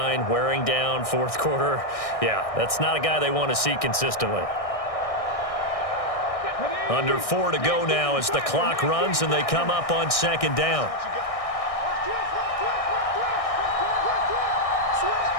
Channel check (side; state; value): right; late; 1.6 ms